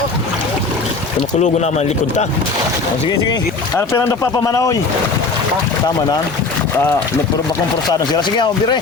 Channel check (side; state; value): right; quieter; 4.0 dB